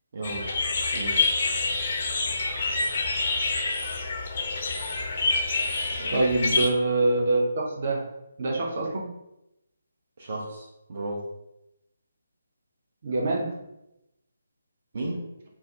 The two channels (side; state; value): both; inverted; correlation -0.79